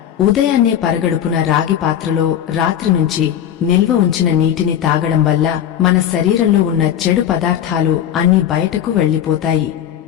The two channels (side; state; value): right; quieter; 10.1 dB